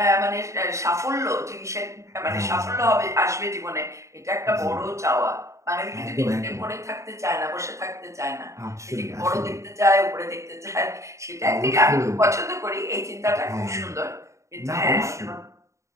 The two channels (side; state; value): left; late; 0.14 ms